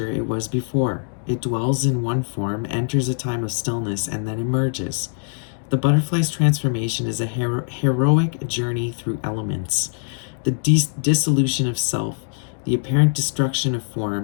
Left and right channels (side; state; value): right; silent; 56 dB below the other